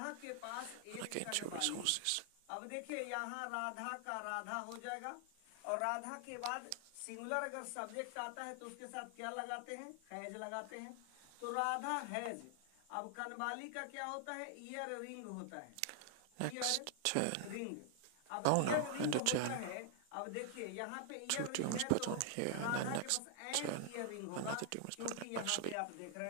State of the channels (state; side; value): different; both; correlation 0.00